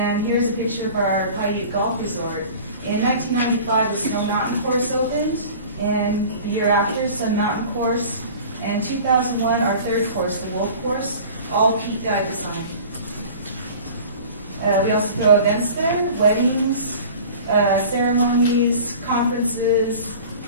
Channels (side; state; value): both; inverted; correlation -0.42